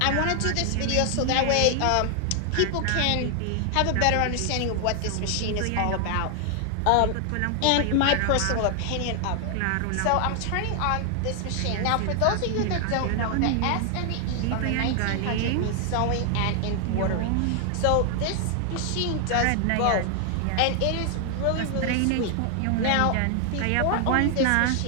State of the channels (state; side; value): different; both; correlation 0.00